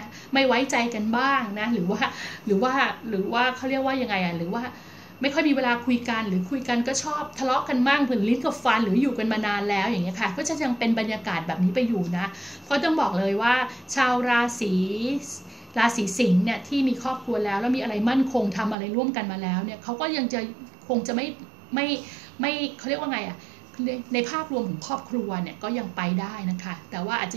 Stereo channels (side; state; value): left; drops out; at 18.8 s